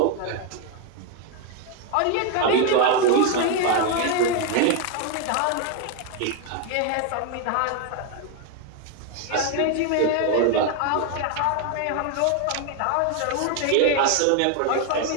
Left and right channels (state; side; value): different; both; correlation 0.01